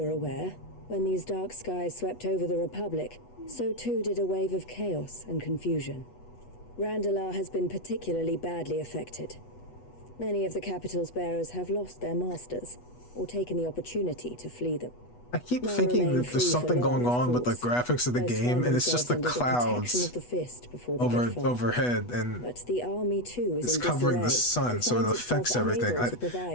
aware, when these dark skies swept over the Republic, so too did a wave of chaos and confusion. Randalar has been particularly badly affected. Many of the capital's bearers have lost their masters, or taken the opportunity to flee them. I keep thinking that there's something going on with the graphics of the game, and it's just the clouds overhead, and but the army too is it's covering the sun, so it affects everything.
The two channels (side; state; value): right; late; 8.2 ms